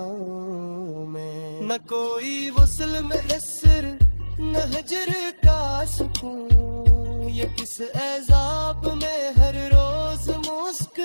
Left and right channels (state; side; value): inverted; both; correlation -1.00